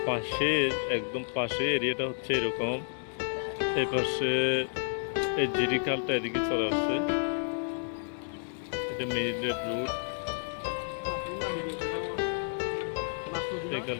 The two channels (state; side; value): silent; right; digital silence